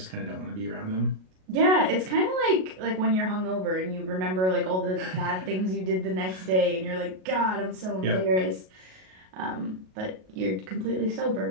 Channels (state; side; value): late; left; 38 ms